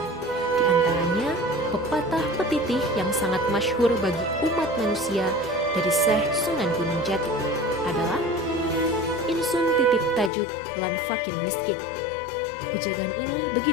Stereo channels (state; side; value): drops out; right; at 10.3 s